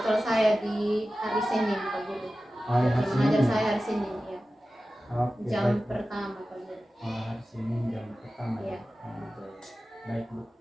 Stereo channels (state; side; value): normal; both; correlation 0.95